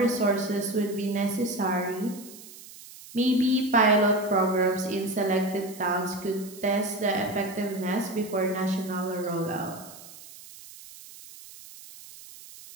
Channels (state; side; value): noise; right; hiss, 18 dB below the sound